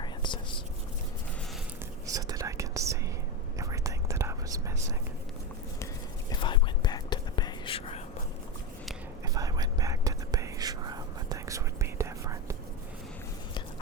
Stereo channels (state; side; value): normal; both; correlation 0.14